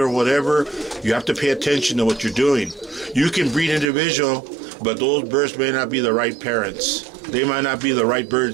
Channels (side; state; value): left; drops out; at 3.9 s